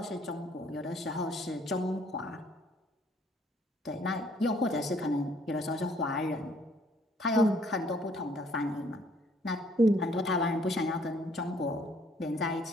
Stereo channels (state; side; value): normal; both; correlation 0.62